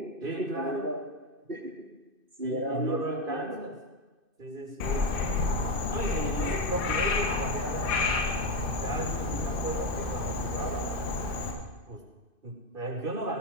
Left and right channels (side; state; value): left; late; 2.6 ms